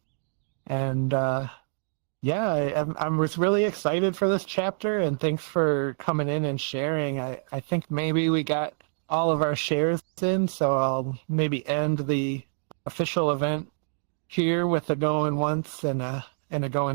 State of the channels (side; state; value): left; silent; digital silence